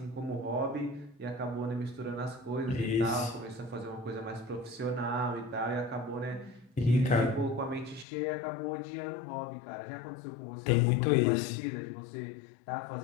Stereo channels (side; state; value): right; drops out; at 8.1 s